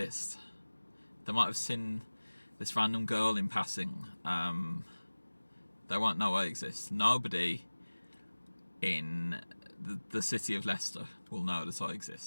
They might have seen this random girl in passing. They won't know I exist. Nobody in the city of Leicester will know that I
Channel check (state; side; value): inverted; both; correlation -1.00